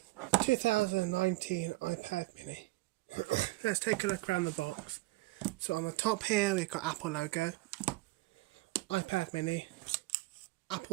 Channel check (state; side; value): quieter; left; 21.2 dB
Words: 2019 iPad mini. Let's take a look around the box. So on the top here, we've got Apple logo, iPad mini,